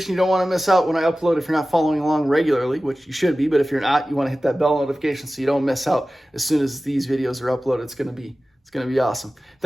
You don't want to miss out when I upload if you're not following along regularly, which you should be. But if you're not, you want to hit that bell notification so you don't miss out as soon as these videos are uploaded. It's going to be awesome.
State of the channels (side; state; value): both; normal; correlation 0.96